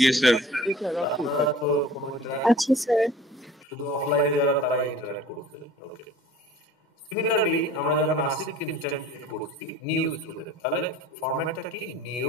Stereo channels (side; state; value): both; normal; correlation 0.44